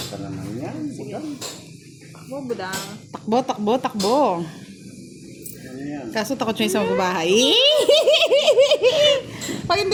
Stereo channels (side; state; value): both; identical; correlation 1.00